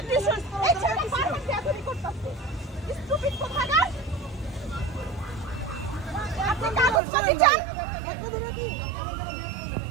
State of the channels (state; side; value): drops out; left; at 7.0 s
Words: স্টুডেন্ট। এই ছেলেটা বারবার ক্যাথলিক করতেছে। স্টুপিড কোথাকার। আপনি কাগজ কপি চান?